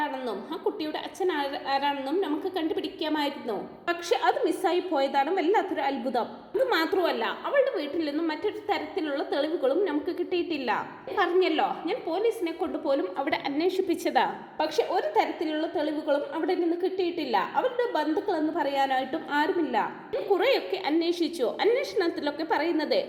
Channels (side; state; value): both; identical; correlation 1.00